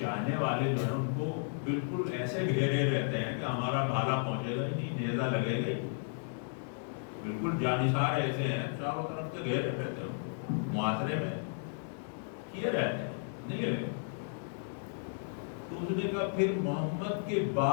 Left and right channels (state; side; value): silent; right; digital silence